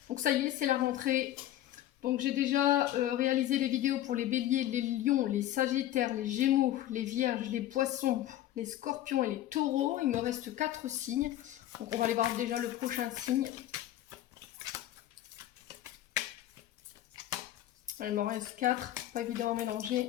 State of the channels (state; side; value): quieter; right; 13.2 dB